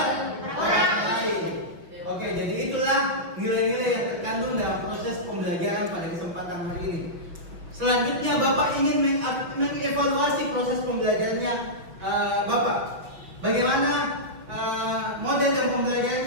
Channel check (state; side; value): late; left; 5.7 ms